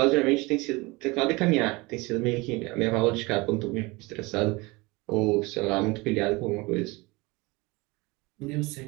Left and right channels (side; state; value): left; quieter; 24.2 dB